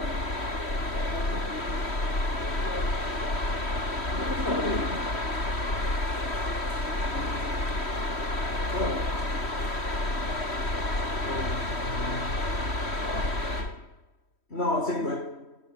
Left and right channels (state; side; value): late; right; 3.1 ms